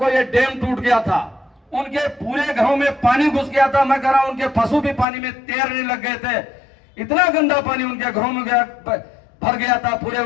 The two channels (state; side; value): drops out; right; at 5.1 s